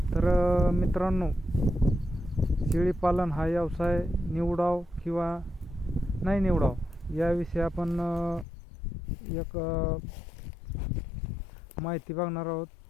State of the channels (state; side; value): drops out; right; at 8.5 s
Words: मित्रांनो, शेळी पालन हा व्यवसाय निवडाव किंवा नाही निवडाव याविषयी आपण एक माहिती बघणार आहोत।